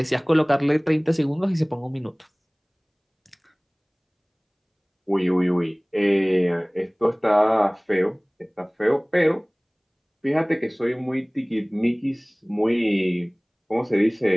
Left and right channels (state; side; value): identical; both; correlation 1.00